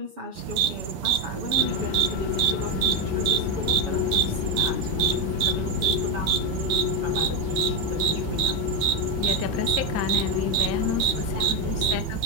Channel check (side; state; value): left; late; 7.5 ms